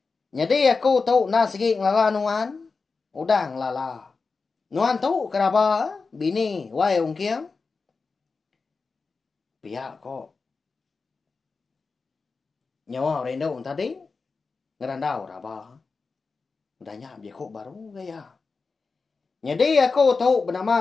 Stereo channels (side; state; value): right; quieter; 4.4 dB